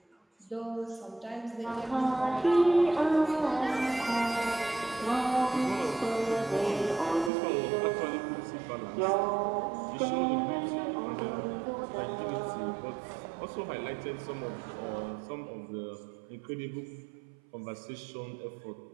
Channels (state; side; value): drops out; left; at 7.3 s